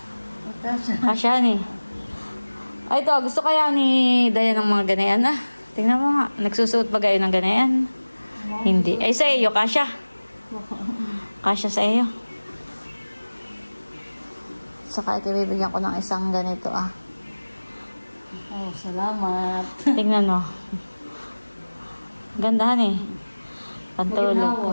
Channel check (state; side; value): inverted; both; correlation -1.00